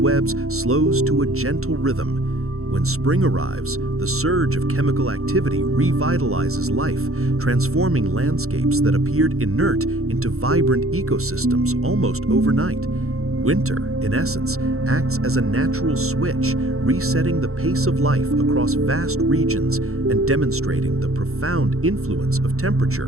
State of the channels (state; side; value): late; left; 0.63 ms